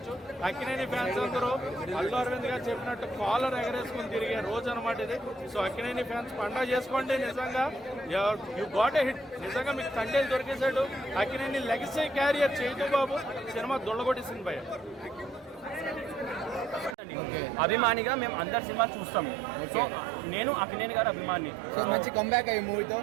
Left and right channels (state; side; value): drops out; left; at 16.9 s